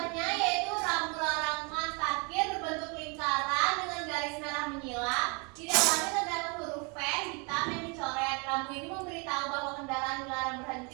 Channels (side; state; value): left; quieter; 32.3 dB